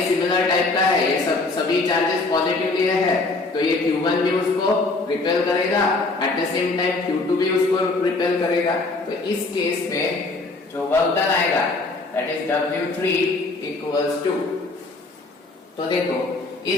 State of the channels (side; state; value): right; quieter; 3.4 dB